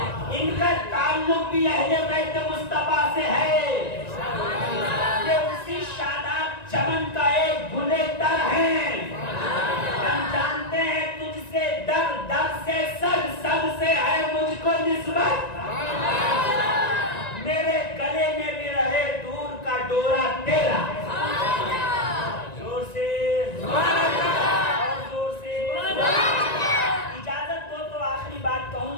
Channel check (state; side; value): late; right; 1.9 ms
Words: ان کا تعلق بھی اہل بیت مصطفیٰ سے ہے۔ یہ اسی شاداب چمن کا ایک گلے تر ہیں۔ ہم جانتے ہیں تجھ سے در، در سے سب، سب سے ہے مجھ کو نسبت۔ میرے گلے میں بھی رہے دور کا ڈورا تیرا۔ زور سے اور زور سے اجازت دو تو آخری بات کہوں